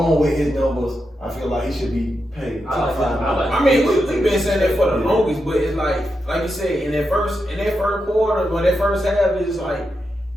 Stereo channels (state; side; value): normal; both; correlation 0.87